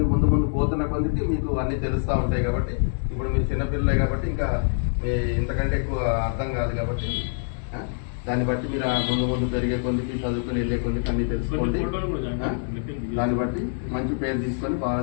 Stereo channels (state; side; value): silent; right; digital silence